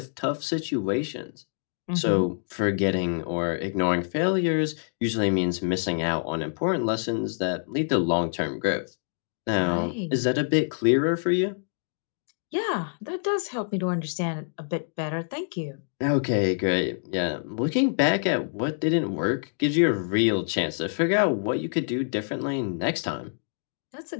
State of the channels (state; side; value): silent; right; digital silence